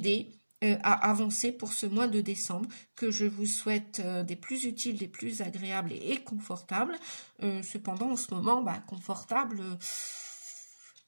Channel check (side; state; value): both; inverted; correlation -1.00